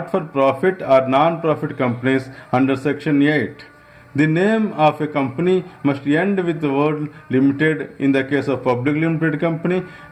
for profit or non-profit companies under section 8. The name of a company must end with the word limited in the case of public limited company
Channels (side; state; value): both; identical; correlation 1.00